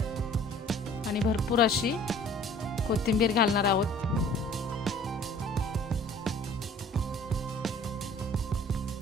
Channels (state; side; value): normal; both; correlation 0.50